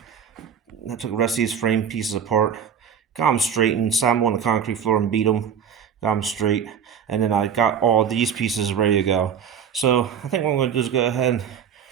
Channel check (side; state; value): left; quieter; 7.8 dB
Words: I took the rest of these frame pieces apart, got them straightened, sat them on the concrete floor and beat them, got them straight, and then I got all these pieces ready to go. So I think what I'm going to do is go ahead and